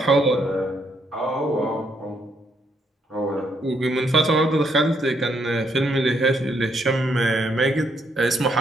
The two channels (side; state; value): both; normal; correlation 0.74